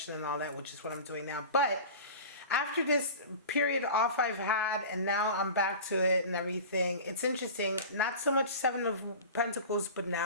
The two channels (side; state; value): both; inverted; correlation -0.35